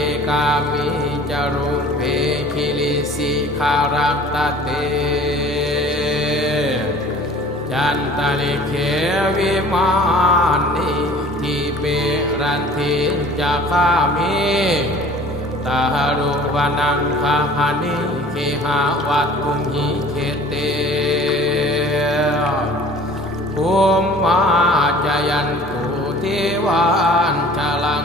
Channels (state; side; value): normal; both; correlation 0.48